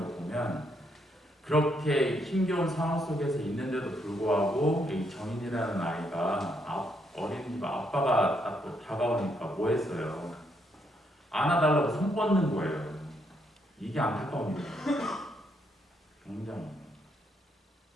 거 보면 그렇게 힘겨운 상황 속에서 있는데도 불구하고 이 정인이라는 아이가 어린이집 아빠가 다가오니까 뭐 했어요? 안아달라고 손 뻗는 거예요. 이게 안타까운 일이에요. 굉장히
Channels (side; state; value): both; normal; correlation 0.75